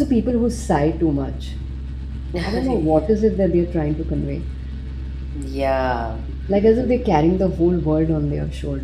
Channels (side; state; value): both; identical; correlation 1.00